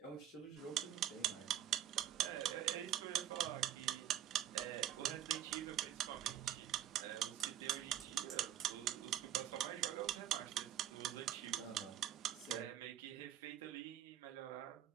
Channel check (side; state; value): left; quieter; 11.4 dB